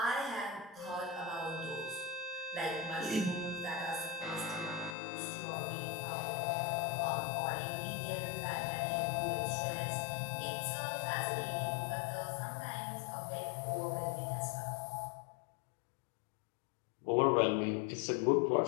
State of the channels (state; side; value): drops out; right; at 5.0 s